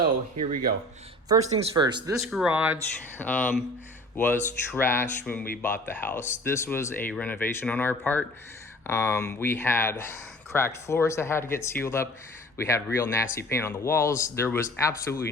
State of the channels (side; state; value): both; normal; correlation 0.45